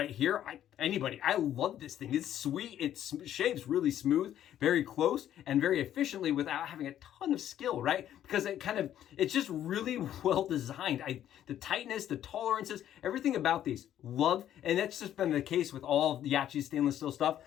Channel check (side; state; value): right; quieter; 11.2 dB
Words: here, I love this thing. It's sweet. It shaves really smooth, very close, and very efficiently without having a ton of skill, right? Because it's just really well designed. The tightness, the tolerances, everything about these, love. And that's just been the case with all of the Yaqi stainless steel stuff.